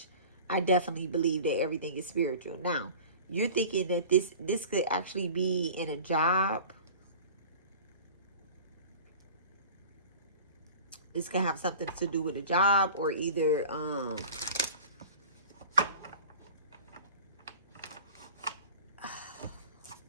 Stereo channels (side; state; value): both; inverted; correlation -0.41